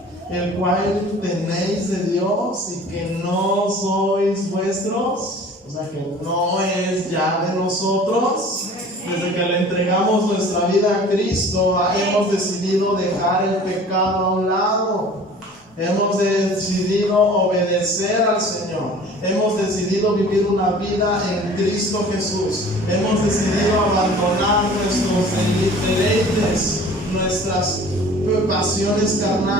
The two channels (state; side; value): normal; both; correlation 0.46